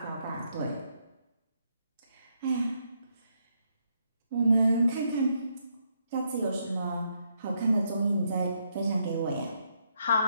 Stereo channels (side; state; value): both; inverted; correlation -0.76